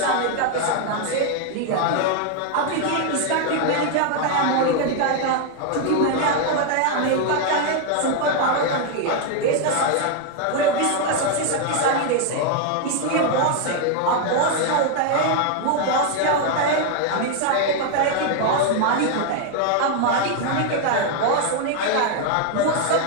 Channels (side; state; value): both; different; correlation 0.00